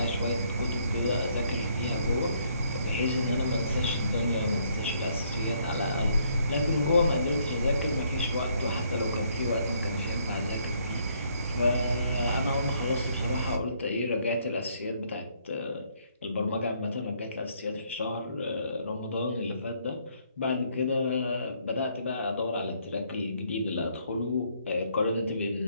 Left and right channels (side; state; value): both; inverted; correlation -0.69